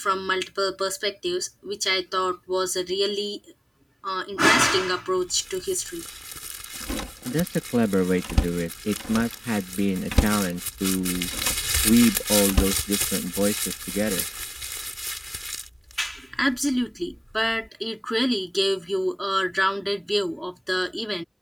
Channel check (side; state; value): both; identical; correlation 1.00